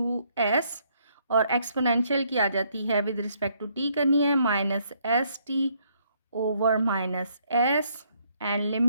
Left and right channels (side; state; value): both; inverted; correlation -0.70